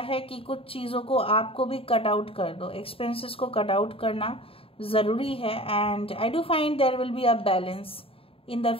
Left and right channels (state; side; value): late; right; 0.27 ms